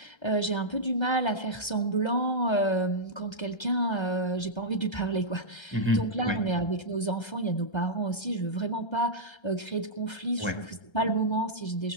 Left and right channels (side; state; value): right; late; 1.3 ms